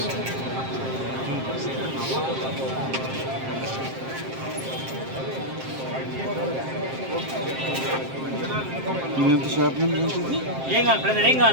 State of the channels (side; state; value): left; late; 7.6 ms